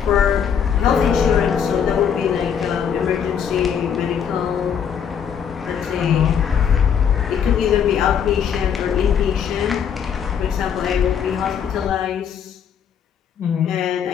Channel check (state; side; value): quieter; right; 7.8 dB